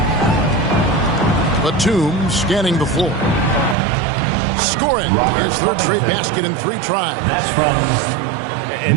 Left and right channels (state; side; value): drops out; left; at 3.8 s